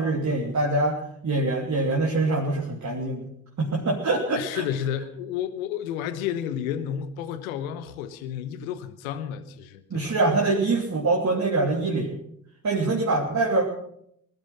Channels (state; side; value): normal; both; correlation 0.03